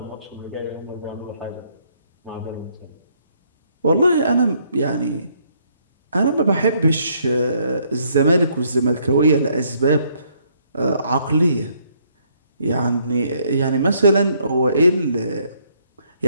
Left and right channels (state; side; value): inverted; both; correlation -0.69